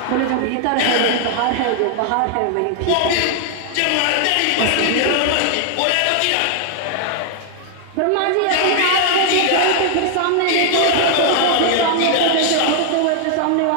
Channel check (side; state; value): both; different; correlation 0.00